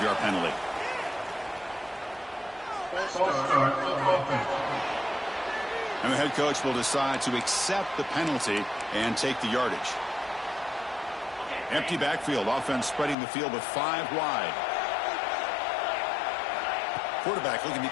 penalty. And the head coach will decide to accept the penalty and take the yardage. Empty backfield. Offense spreading the field with 5 wide. Quarterback looking to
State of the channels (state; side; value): drops out; right; at 13.2 s